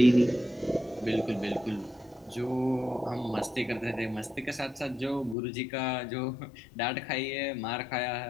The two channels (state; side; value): drops out; right; at 5.4 s